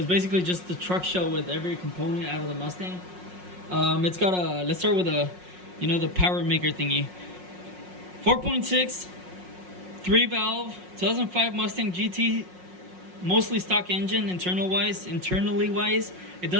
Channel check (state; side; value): late; left; 5.5 ms